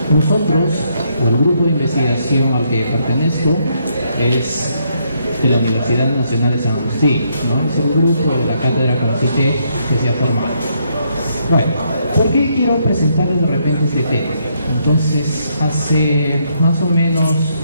nosotros, o el grupo de investigación al que pertenezco, es de la Universidad Nacional de San Agustín, ¿no? Es el grupo de la cátedra CONCITEC que se ha formado. Bueno, ¿por qué quiero presentarles de repente este tema? Entonces, hace más o menos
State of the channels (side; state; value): both; inverted; correlation -0.74